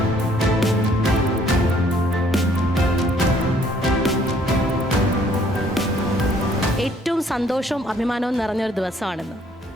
ഏറ്റവും സന്തോഷവും അഭിമാനവും നിറഞ്ഞൊരു ദിവസമാണെന്ന്.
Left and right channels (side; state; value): both; normal; correlation 0.62